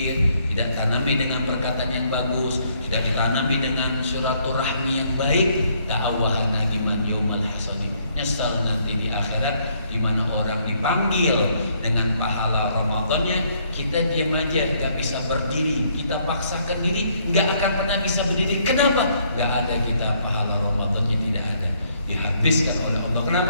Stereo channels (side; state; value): both; inverted; correlation -0.68